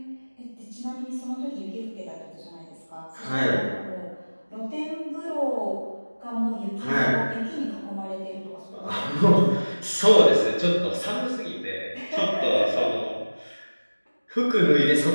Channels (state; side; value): inverted; both; correlation -1.00